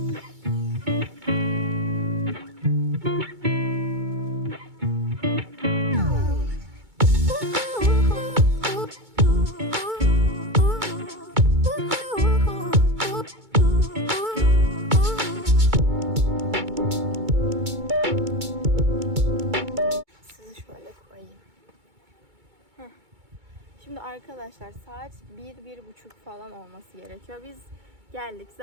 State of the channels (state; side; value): late; left; 2.2 ms